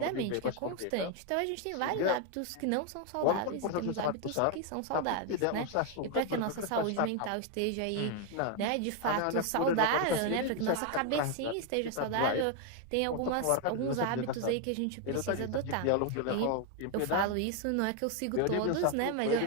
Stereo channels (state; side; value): different; both; correlation 0.01